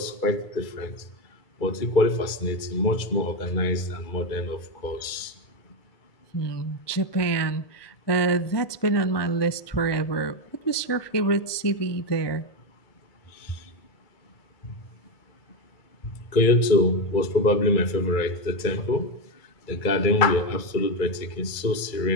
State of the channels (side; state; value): right; late; 2.3 ms